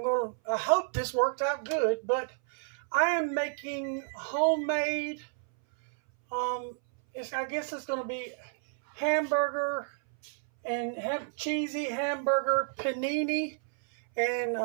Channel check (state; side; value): silent; left; 58 dB below the other